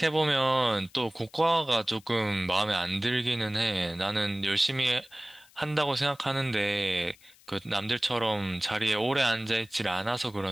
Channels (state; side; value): noise; left; hiss, 27 dB below the sound